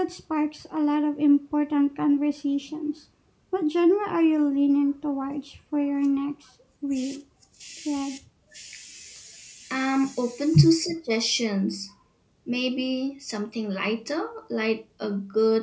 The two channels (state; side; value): identical; both; correlation 1.00